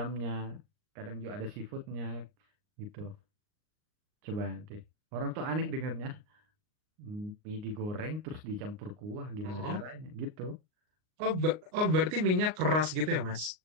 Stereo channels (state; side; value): late; left; 38 ms